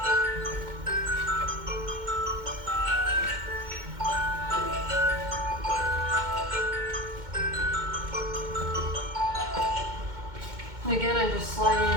And again, I'm just sliding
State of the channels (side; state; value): left; late; 2.1 ms